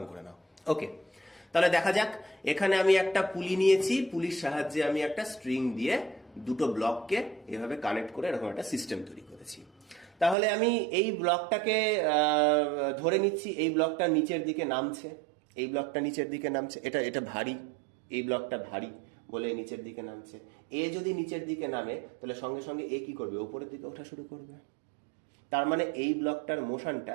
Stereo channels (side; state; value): left; drops out; at 10.4 s